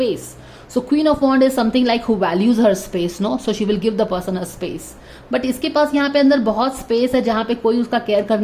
So queen of wand is something like who values her space, no, so she will give the person a space. But इसके पास यहाँ पे अंदर बहुत स्पेस है जहाँ पे कोई उसका केयर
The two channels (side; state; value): both; identical; correlation 1.00